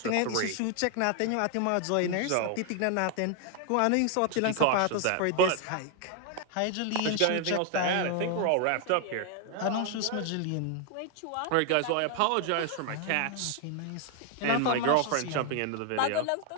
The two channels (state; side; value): different; both; correlation 0.00